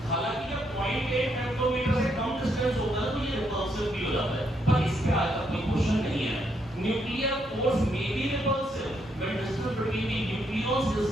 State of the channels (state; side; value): normal; both; correlation 0.76